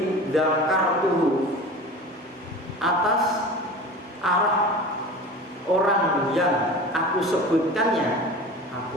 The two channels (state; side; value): normal; both; correlation 0.35